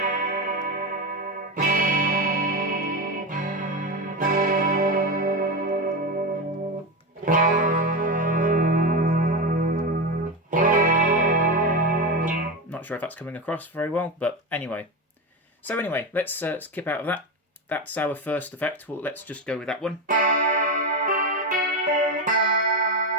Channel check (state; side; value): normal; both; correlation 0.16